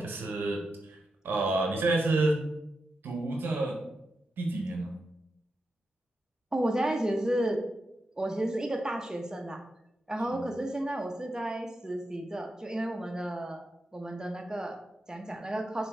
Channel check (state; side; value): normal; both; correlation 0.88